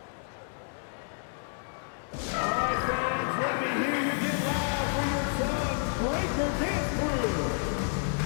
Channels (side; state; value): right; silent; 58 dB below the other